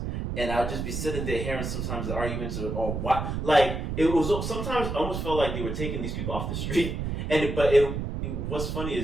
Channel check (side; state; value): right; noise; rumble, 3 dB below the sound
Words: And I'd just be sitting there hearing sometimes the arguments or what, like it was sometimes I almost felt like they were taking these people off the street. But what's funny